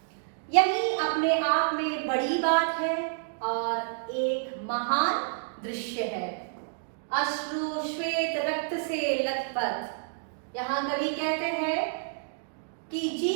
यही अपने आप में बड़ी बात है और एक महान दृश्य है। अश्रु श्वेत रक्त से लथपथ। यहाँ कवि कहते हैं कि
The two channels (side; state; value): left; silent; digital silence